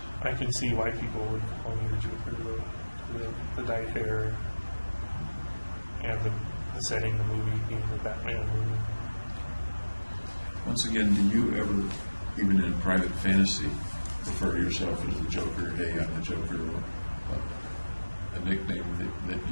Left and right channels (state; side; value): inverted; both; correlation -1.00